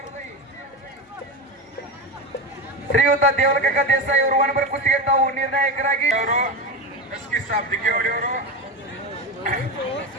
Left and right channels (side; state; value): both; normal; correlation 0.19